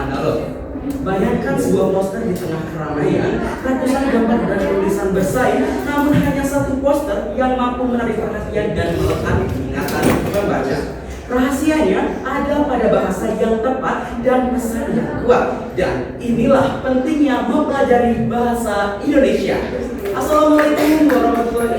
analog. Bayangkan sebuah poster di tengah keramaian, ratusan gambar dan tulisan bersaing, namun hanya satu poster yang mampu menarik perhatian dan melekat di ingatan pembaca. Rahasianya ada pada bahasa yang tepat dan pesan yang kuat. Dan inilah pentingnya mempelajari bahasa Indonesia. Assalamualaikum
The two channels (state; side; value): identical; both; correlation 1.00